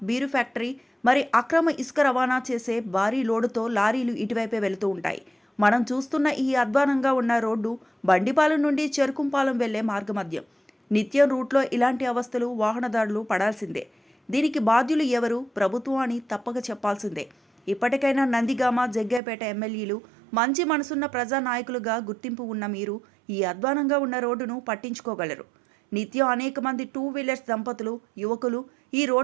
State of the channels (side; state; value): left; drops out; at 19.2 s